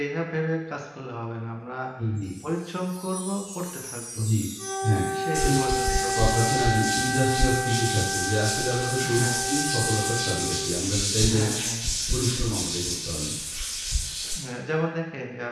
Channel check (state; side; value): identical; both; correlation 1.00